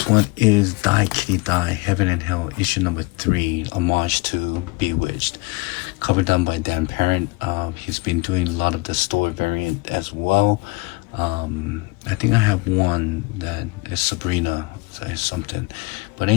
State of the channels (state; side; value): quieter; right; 23.8 dB